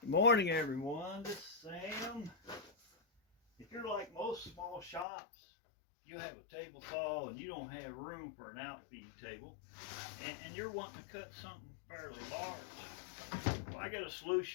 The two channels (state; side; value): drops out; right; at 5.1 s